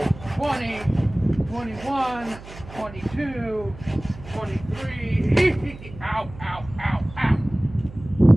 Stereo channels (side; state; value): right; noise; hum, 16 dB below the sound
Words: 20, 21, 22, 23. Ow, ow, ow, ow.